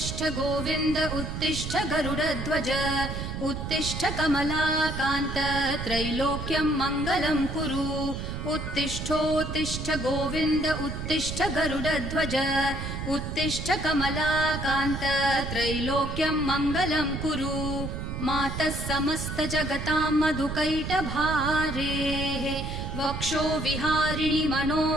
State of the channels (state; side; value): noise; right; rumble, 5 dB below the sound